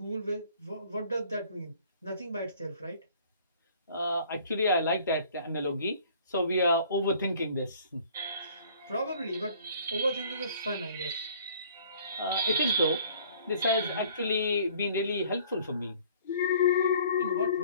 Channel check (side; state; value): both; inverted; correlation -0.54